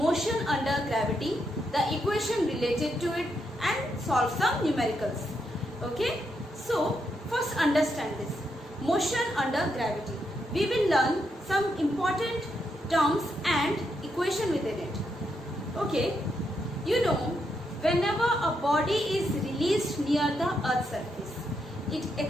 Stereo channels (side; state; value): both; normal; correlation 0.80